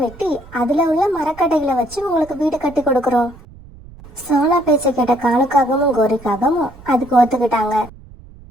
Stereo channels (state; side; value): noise; right; rumble, 21 dB below the sound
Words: வெட்டி அதுல உள்ள மரக்கட்டைகளை வச்சு உங்களுக்கு வீடு கட்டி கொடுக்கறோம். சோனா பேச்ச கேட்ட காலுக்காகவும் கோரிக்காகவும் அதுக்கு ஒத்துக்கிட்டாங்க.